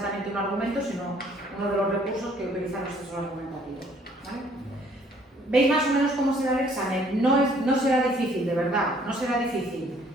un argumento, sino uno de los recursos que utilizan los textos argumentativos. ¿Vale? ¿Veis más o menos cómo será el examen? No será difícil, de verdad, no será difícil.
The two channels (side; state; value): both; normal; correlation 0.60